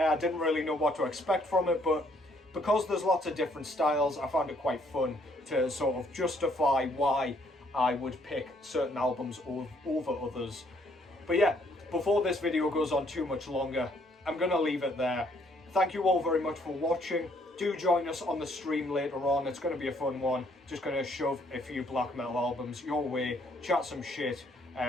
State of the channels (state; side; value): normal; both; correlation 0.67